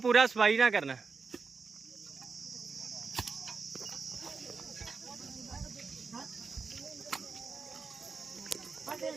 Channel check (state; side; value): quieter; left; 4.9 dB